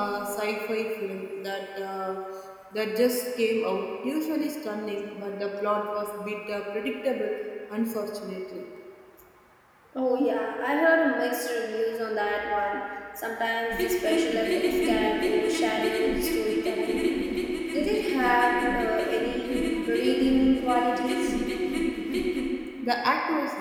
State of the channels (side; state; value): both; identical; correlation 1.00